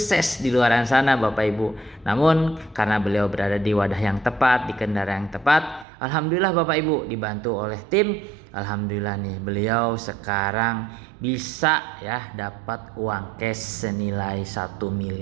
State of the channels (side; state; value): left; drops out; at 5.9 s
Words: di luar sana Bapak Ibu. Namun karena beliau berada di wadah yang tepat, di kendaraan yang tepat, alhamdulillah Bapak Ibu dibantu oleh tim. Alhamdulillah nih beliau sekarang bisa ya dapat uang cash senilai 1